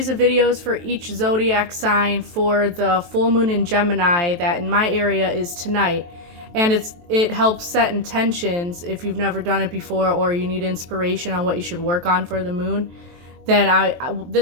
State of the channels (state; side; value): late; left; 23 ms